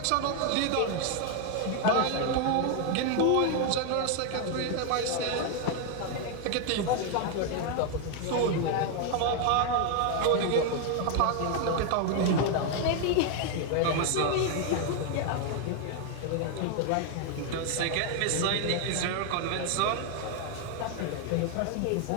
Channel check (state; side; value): different; both; correlation 0.01